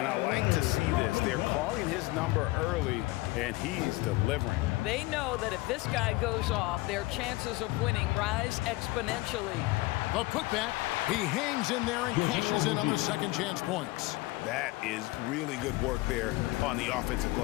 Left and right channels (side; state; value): right; quieter; 20.9 dB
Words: I like to see this. They're calling his number early, and he's delivering. They know that if this guy goes off, their chances of winning rise exponentially. The putback. He hangs in there and cashes in on the second chance points. That is really good work there on the offensive